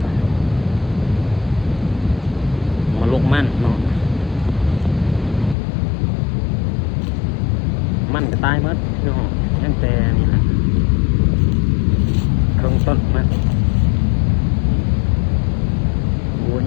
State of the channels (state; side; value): drops out; right; at 5.6 s